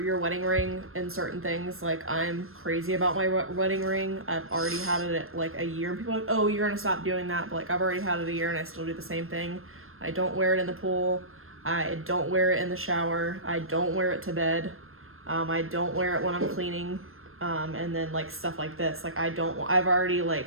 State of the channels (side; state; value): left; late; 0.61 ms